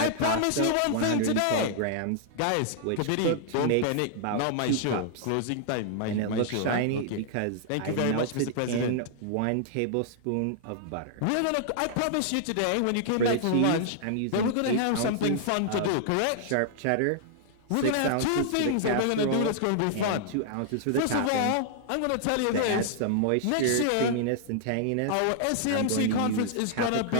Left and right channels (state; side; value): different; both; correlation -0.01